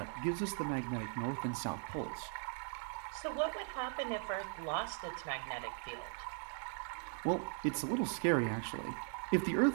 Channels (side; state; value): left; silent; 52 dB below the other